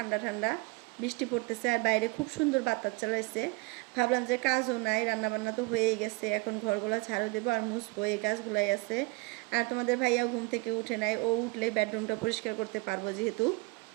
ঠান্ডা, বৃষ্টি পড়তেছে আর বাইরে খুব সুন্দর বাতাস চালাইছে। ভাবলাম যে কাজও নাই, রান্নাবান্না তো হয়েই গেছে, এখন ঘরগুলো ঝাড়ু দেবো আর মুছবো, এই কাজগুলাই আছে। আর তোমাদের ভাইয়াও ঘুম থেকে উঠে নাই, ও উঠলে বেডরুমটা পরিষ্কার করতে পারবো যেহেতু,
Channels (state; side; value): quieter; left; 26.0 dB